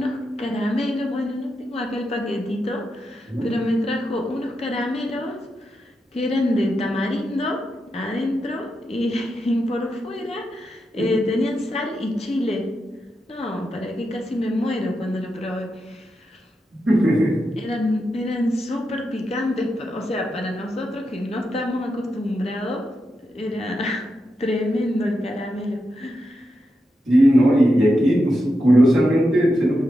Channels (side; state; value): both; normal; correlation 0.87